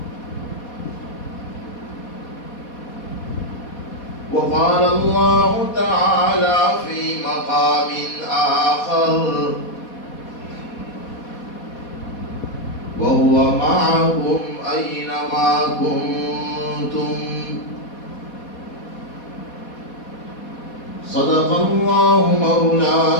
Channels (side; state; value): right; late; 4.2 ms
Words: وقال الله تعالى في مقام آخر وهو معكم أينما كنتم صدق الله